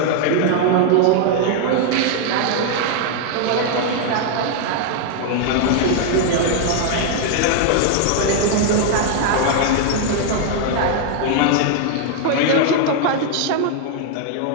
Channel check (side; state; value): both; different; correlation 0.00